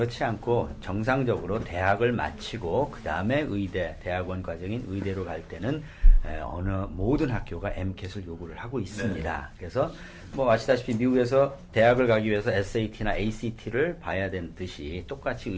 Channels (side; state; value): both; identical; correlation 1.00